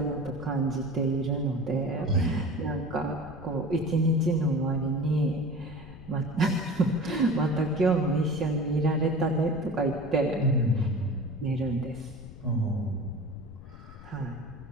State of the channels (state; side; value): noise; left; rumble, 16 dB below the sound